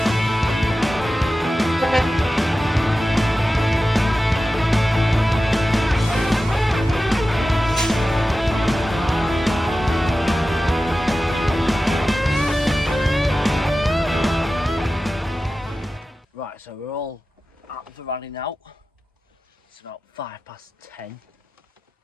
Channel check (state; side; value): normal; both; correlation 0.94